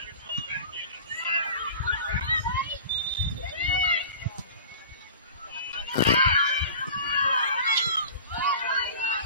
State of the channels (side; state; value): both; inverted; correlation -0.40